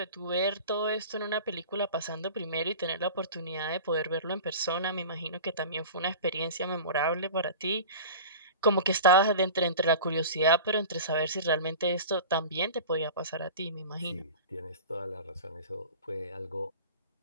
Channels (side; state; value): both; inverted; correlation -0.36